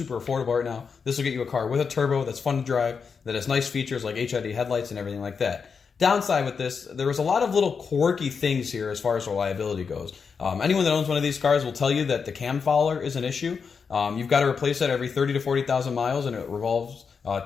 affordable right now. This will get you a car with a turbo that's fun to drive, that has nice features like HID headlights and everything like that. Downside with this, there was a lot of little quirky things here as far as reliability goes. Anyone that owns one of these cars will tell you that the cam fouler is an issue. You've got to replace that every 30 to 40,000 miles, and it revolves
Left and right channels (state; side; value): quieter; right; 5.8 dB